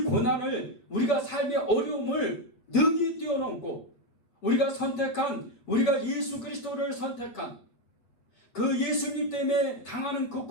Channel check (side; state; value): right; late; 8.6 ms